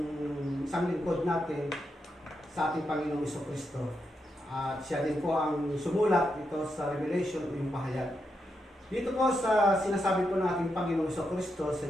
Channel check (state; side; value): normal; both; correlation 0.84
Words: isang lingkod natin sa ating Panginoong Jesucristo. At siya din po ang sumulat ito sa Revelation o yung pahayag. Dito po sa sinasabi po nating Panginoong Jesucristo sa